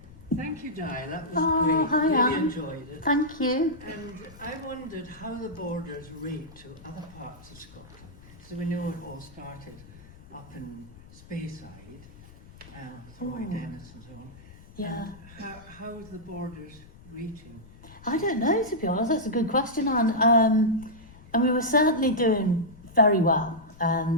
Thank you, Diane. That was Oh, great. hi, Really Anne. enjoyed it. Thank you. And I wondered how the borders rate to other parts of Scotland. So we know it all started up in Speyside, Tweed, Dennis and so on. Yeah. And how is the borders rating? I don't know, to be honest. That's a good question, Anne. And we were certainly doing very well.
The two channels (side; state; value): left; noise; rumble, 21 dB below the sound